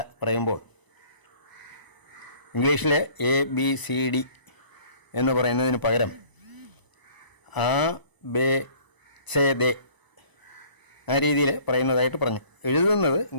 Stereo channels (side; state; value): right; late; 1.0 ms